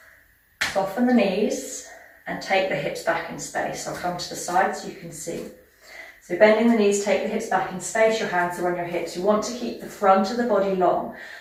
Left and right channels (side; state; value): both; identical; correlation 1.00